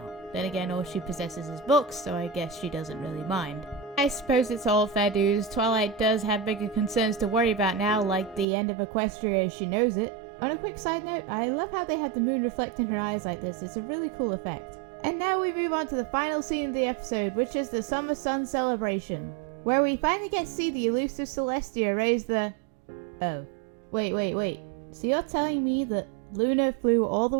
Then again, all she possesses is books, so I guess she doesn't really mind. I suppose it's all fair dues. Twilight does have bigger concerns to worry about now, like the end of Equestria as she knows it. On a quick side note, I love how they have the moon reflect in her eyes like this. It's a really cool effect. And now we move on to the final scene of the episode, which is the Summer Sun celebration, where we finally get to see the elusive Celestia raise the... Oh. Wait. So you're telling me that Luna flew all the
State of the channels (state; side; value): drops out; left; at 8.5 s